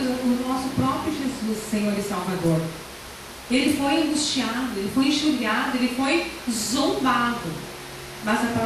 nosso próprio Jesus, Senhor e Salvador. Ele foi angustiado, ele foi enxurrado, ele foi zombado. Mas a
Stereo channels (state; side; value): identical; both; correlation 1.00